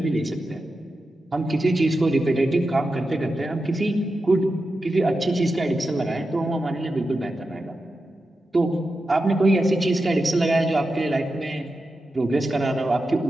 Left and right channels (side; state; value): both; normal; correlation 0.90